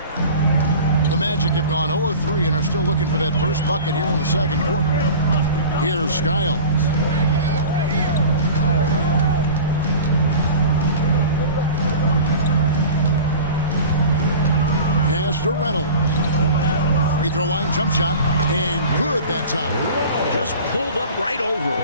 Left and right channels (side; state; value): both; inverted; correlation -0.38